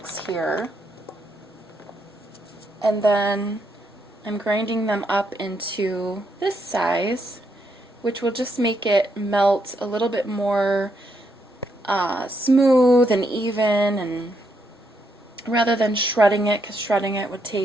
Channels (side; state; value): both; normal; correlation 0.77